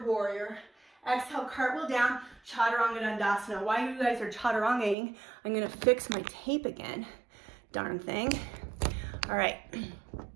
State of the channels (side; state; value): left; drops out; at 5.0 s